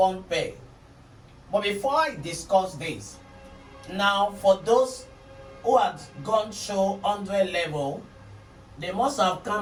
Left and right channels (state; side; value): identical; both; correlation 1.00